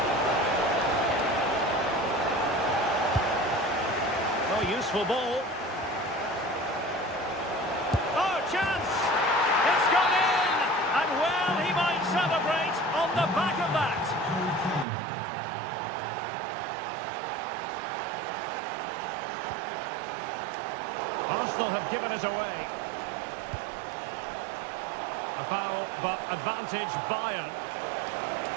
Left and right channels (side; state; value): left; drops out; at 14.9 s